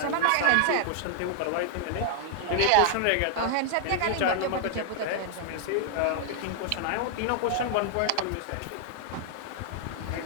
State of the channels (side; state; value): both; different; correlation -0.01